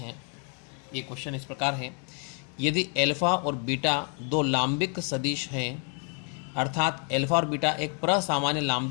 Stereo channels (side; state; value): right; quieter; 39.4 dB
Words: ये क्वेश्चन इस प्रकार है, यदि एल्फा और बीटा दो लांबिक सदिश हैं, अर्थात एल्फा और बीटा एक प्रसामान्य